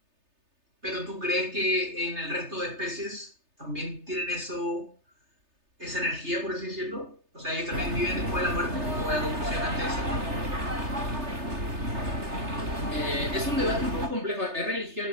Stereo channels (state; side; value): late; left; 3.3 ms